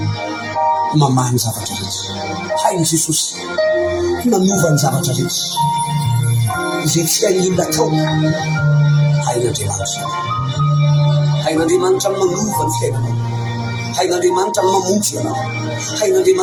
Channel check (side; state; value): both; identical; correlation 1.00